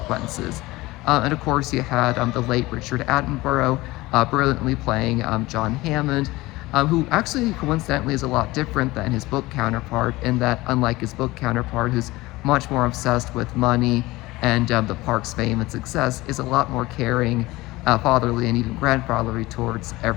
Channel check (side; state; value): right; quieter; 19.9 dB